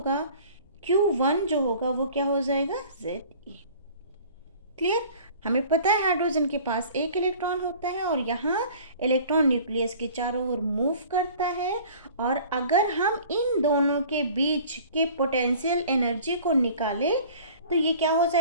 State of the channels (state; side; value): inverted; both; correlation -0.47